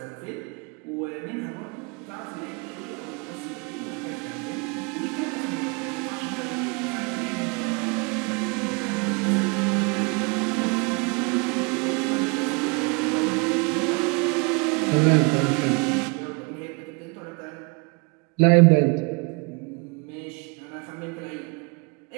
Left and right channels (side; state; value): left; quieter; 31.5 dB